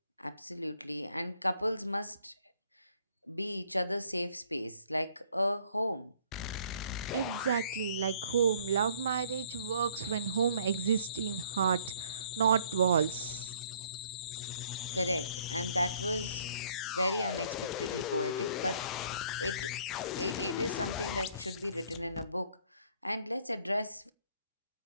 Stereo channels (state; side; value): inverted; both; correlation -0.60